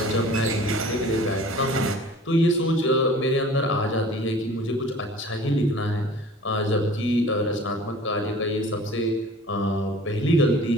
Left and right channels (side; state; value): both; normal; correlation 0.46